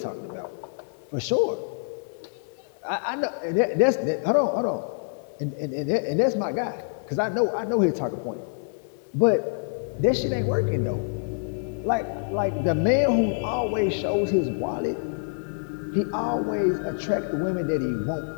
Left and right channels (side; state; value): right; silent; 61 dB below the other